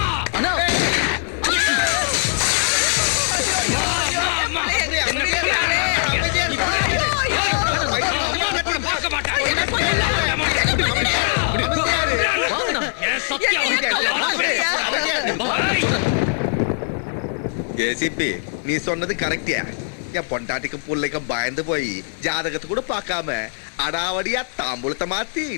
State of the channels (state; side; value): silent; right; digital silence